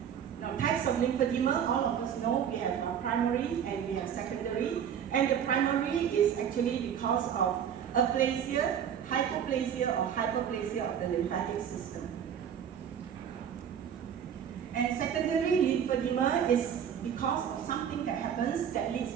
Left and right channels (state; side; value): quieter; left; 8.6 dB